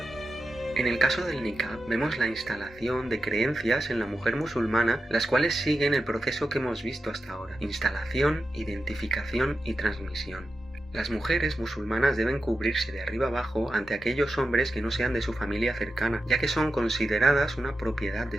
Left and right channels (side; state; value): both; normal; correlation 0.91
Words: En el caso del niqab vemos la instalación de creencias en la mujer musulmana, las cuales siguen el proceso que hemos visto hasta ahora: instalación, identificación y transmisión. Las mujeres musulmanas deben cubrirse de arriba abajo ante aquellos hombres que no sean de su familia cercana, ya que son consideradas una propiedad de